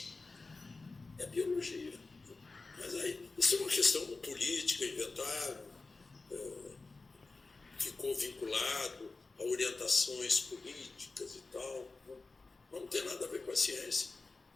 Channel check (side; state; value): right; quieter; 3.7 dB